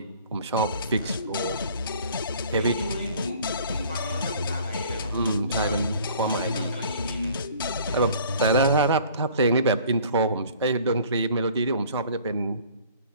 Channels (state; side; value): inverted; both; correlation -0.52